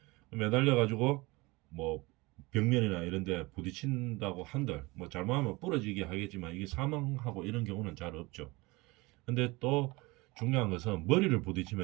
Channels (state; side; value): quieter; left; 23.3 dB